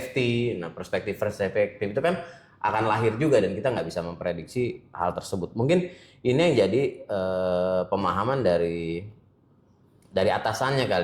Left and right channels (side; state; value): both; identical; correlation 1.00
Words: Nah, perspektif itu kan akan lahir juga dan kita nggak bisa memprediksi hal tersebut. Mungkin ini yang jadi pemahaman dari atasannya